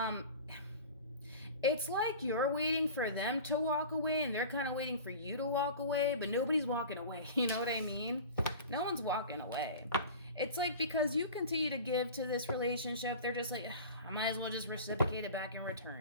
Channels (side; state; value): both; inverted; correlation -0.37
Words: It's like you're waiting for them to walk away and they're kind of waiting for you to walk away, but nobody's walking away. You know what I mean? No one's walking away. It's like because you continue to give to this relationship, they're just like, I might as well just reciprocate it back in